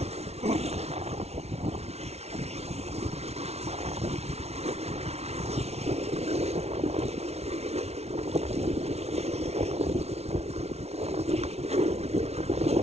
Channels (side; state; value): left; late; 0.31 ms